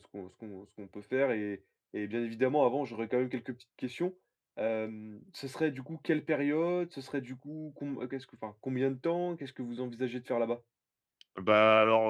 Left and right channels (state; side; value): identical; both; correlation 1.00